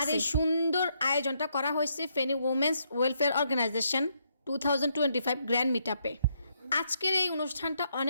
আর এই সুন্দর আয়োজনটা করা হয়েছে Feni women's welfare organisation 2025 grand মিটআপে। আজকের এই অনুষ্ঠানটা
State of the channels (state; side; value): inverted; both; correlation -0.75